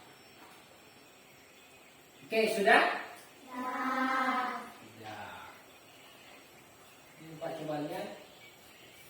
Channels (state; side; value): identical; both; correlation 1.00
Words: Oke, sudah? Dah. Sudah. Ini Pak coba lihat.